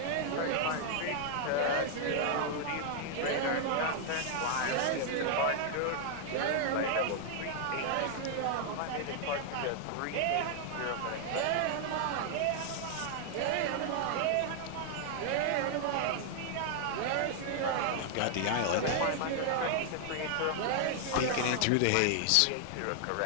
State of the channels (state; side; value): different; both; correlation 0.00